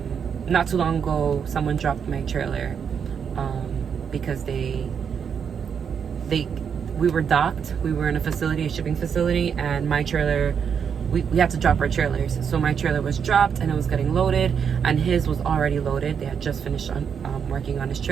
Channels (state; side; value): quieter; left; 7.1 dB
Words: Not too long ago, someone dropped my trailer because we were docked. We were in a shipping facility, and my trailer, we had to drop our trailers. So my trailer was dropped and it was getting loaded, and his was already loaded. They had just finished working on his